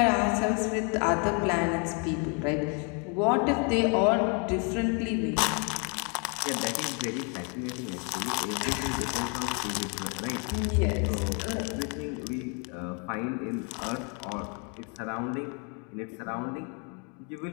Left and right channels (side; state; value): right; quieter; 36.5 dB